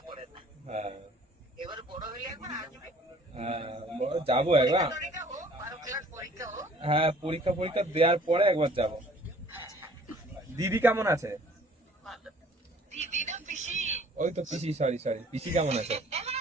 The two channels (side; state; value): both; normal; correlation 0.54